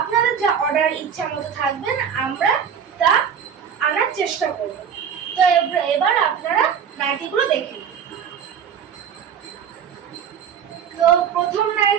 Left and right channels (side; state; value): left; quieter; 7.7 dB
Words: যা অর্ডার ইচ্ছা মতো থাকবেন আমরা তা আনার চেষ্টা করব। তো এবার আপনারা নাইটিগুলো দেখে নিন। তো প্রথম